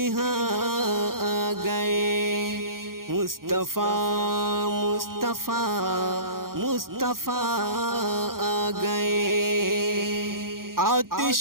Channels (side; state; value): left; late; 0.92 ms